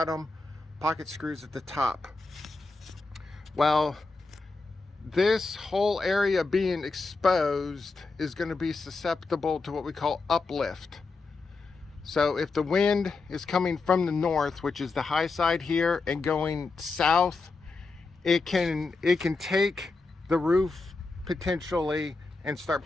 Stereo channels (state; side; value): quieter; right; 3.9 dB